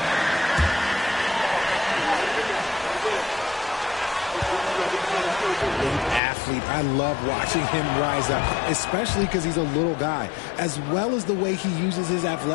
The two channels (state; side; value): drops out; right; at 6.2 s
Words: I love watching him rise up, especially because he's a little guy, as well as the way he uses his